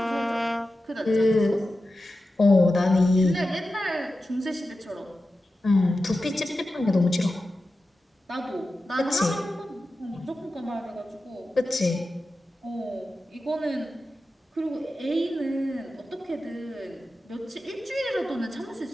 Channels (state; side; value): normal; both; correlation 0.93